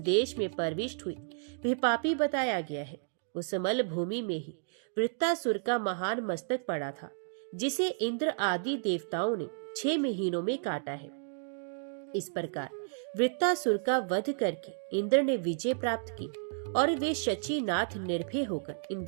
में प्रविष्ट हुई वह पापी बताया गया है। उस मल भूमि में ही वृत्तासुर का महान मस्तक पड़ा था, जिसे इंद्र आदि देवताओं ने 6 महीनों में काटा है। इस प्रकार वृत्तासुर का वध करके इंद्र ने विजय प्राप्त की और वे शचीनाथ निर्भय होकर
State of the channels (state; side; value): silent; left; digital silence